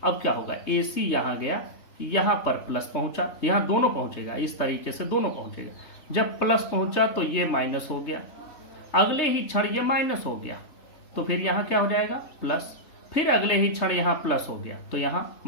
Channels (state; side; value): late; right; 3.4 ms